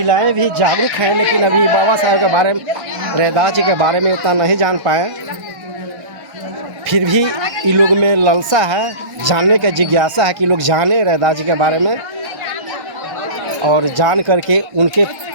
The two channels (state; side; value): late; left; 1.1 ms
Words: भी जागरूक हैं, लेकिन अभी बाबा साहब के बारे में, रैदास जी के बारे में इतना नहीं जान पाए। फिर भी इन लोग में लालसा है, जानने का जिज्ञासा है कि लोग जाने रैदास जी के बारे में और जान करके उनके